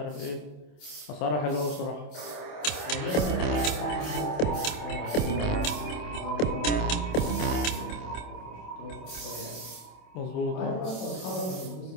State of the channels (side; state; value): right; late; 27 ms